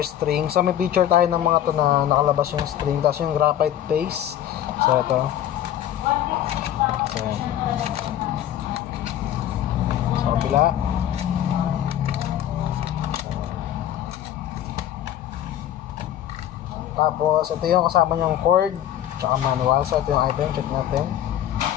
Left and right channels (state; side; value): quieter; right; 11.4 dB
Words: string. So may picture tayo ng mga to na nakalabas yung string. Tapos yung graphite paste. So ito. So yan. So kabila. Tapos, ito yung kasama niyang cord tsaka manual. So, ito yung item. Check natin.